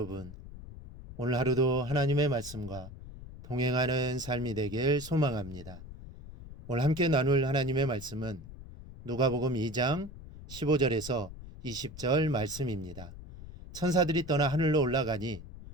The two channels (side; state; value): left; noise; rumble, 14 dB below the sound